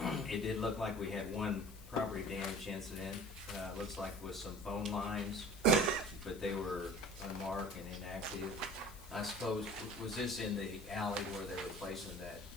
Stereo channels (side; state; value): left; noise; hiss, 19 dB below the sound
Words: it did look like we had one property damage incident. Looks like with some phone lines, but they were unmarked and inactive. I suppose, was this in the alley where they were placing that